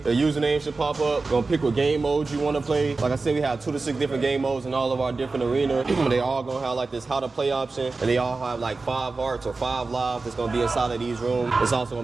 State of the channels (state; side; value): quieter; left; 3.8 dB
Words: username should pop up. You're gonna pick what game modes you wanna play. Like I said, we have 2 to 6 different game modes in all of our different arenas. They all gonna have like this how to play option, and they all have like 5 hearts or 5 lives that's gonna be inside of these rooms. It's also